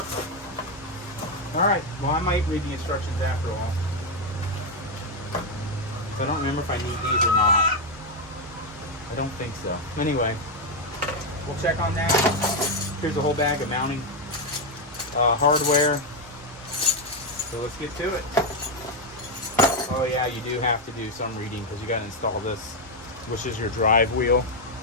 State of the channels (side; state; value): both; normal; correlation 0.04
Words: Alright, well, I might read the instructions after all. So I don't remember if I need these or not. I don't think so. Anyway, we'll check on that. Here's a whole bag of mounting hardware. So let's get to it. Oh yeah, you do have to do some reading because you got to install this, which is your drive wheel.